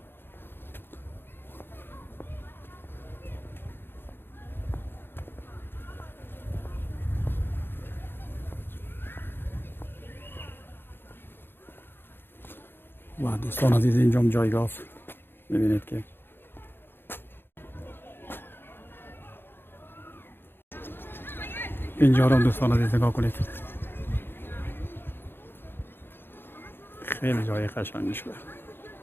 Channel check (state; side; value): late; right; 0.10 ms